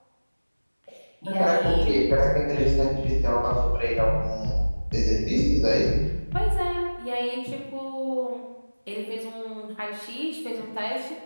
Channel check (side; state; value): both; inverted; correlation -1.00